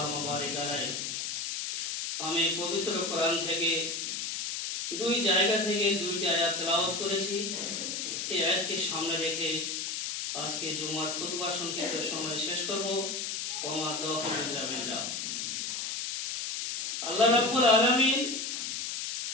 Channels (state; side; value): noise; left; hiss, 3 dB below the sound